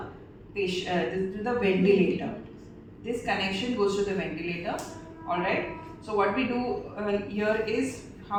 patient, to the ventilator. This connection goes to the ventilator. Alright, so what we do here is,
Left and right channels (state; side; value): identical; both; correlation 1.00